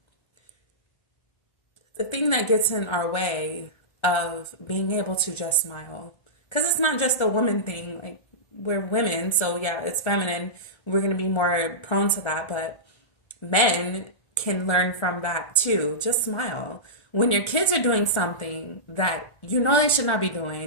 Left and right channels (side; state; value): right; late; 1.3 ms